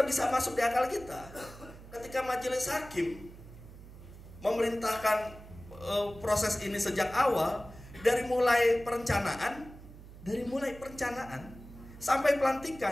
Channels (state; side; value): noise; right; hum, 17 dB below the sound